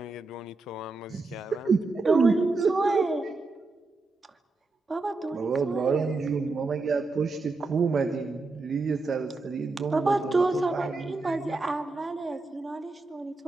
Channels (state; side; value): quieter; left; 3.6 dB